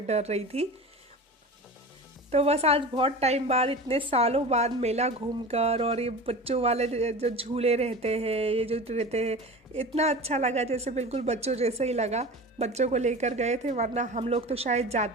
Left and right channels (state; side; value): normal; both; correlation 0.33